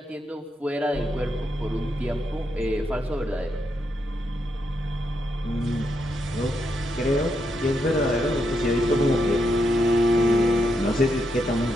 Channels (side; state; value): both; normal; correlation 0.81